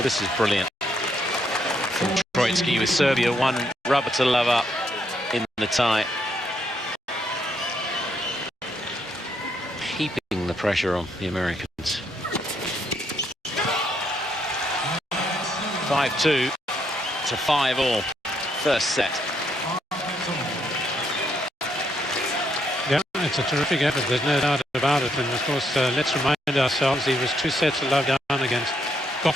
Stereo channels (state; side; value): normal; both; correlation 0.75